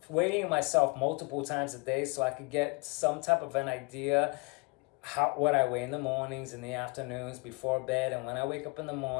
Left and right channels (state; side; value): quieter; right; 29.9 dB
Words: weighing myself multiple times a day so I could get some type of an idea what I weigh in the mornings, in the afternoons, before bed, and when I wake up in the